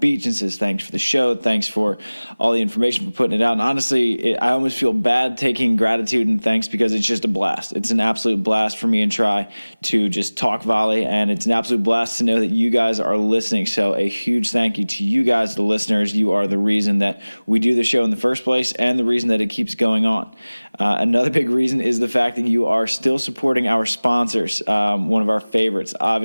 and says thanks for the show, thanks for all the information, for putting it out. And honestly, I almost feel bad taking gratitude and thanks because it's just a blast. It's an absolute blast for me and Try to just talk volley, and it's an absolute blast to know that you guys are listening. So a huge thank you to you guys, the listeners. You are the reason that we do the show in the first place and the reason that it keeps going on. Another big reason is the fact that you are still supporting our sponsors. One of our favorites,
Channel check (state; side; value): inverted; both; correlation -1.00